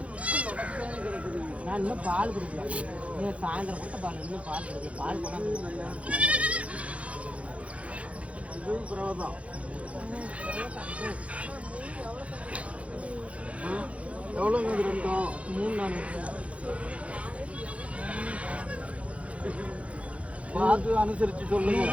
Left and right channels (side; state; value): left; late; 0.063 ms